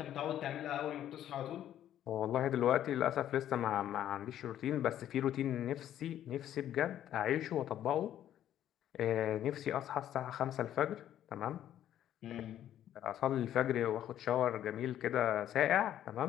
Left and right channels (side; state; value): right; quieter; 11.3 dB